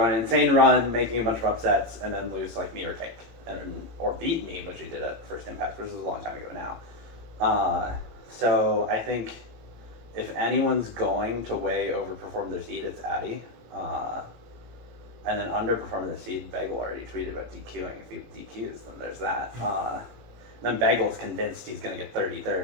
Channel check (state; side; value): late; left; 18 ms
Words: on an insane run, making a bunch of upsets, and then lose me or Cake, or beat me, which he did at First Impact, which is a long time ago now. So I think if anyone's going to way overperform their seed, it's Addy. And then underperform their seed, Bagel already tweeted about DQing. If he DQs, then there's that. Then Bagel's convinced he's going to get